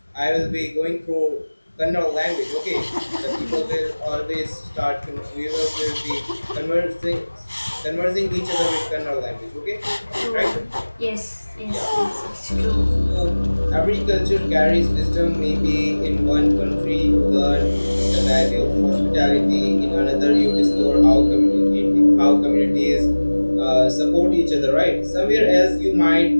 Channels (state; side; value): inverted; both; correlation -1.00